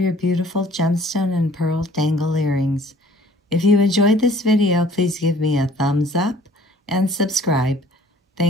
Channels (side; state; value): both; normal; correlation 0.54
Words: beautiful gemstone and pearl dangle earrings. If you enjoyed this video, please give me a thumbs up and subscribe.